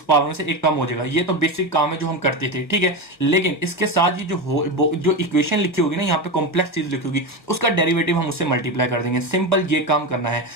पावर में से एक कम हो जाएगा। ये तो बेसिक काम है जो हम करते थे, ठीक है। लेकिन इसके साथ ही जो इक्वेशन लिखी होगी ना, यहाँ पे कॉम्प्लेक्स चीज लिखी होगी, उसका डेरिवेटिव हम उससे मल्टीप्लाई कर देंगे। सिंपल ये काम करना है।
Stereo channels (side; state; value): right; late; 1.5 ms